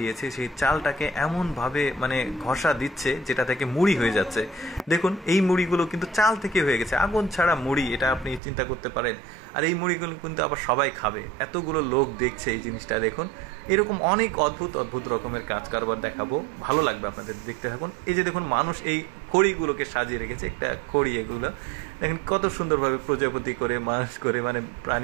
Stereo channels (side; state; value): left; drops out; at 8.4 s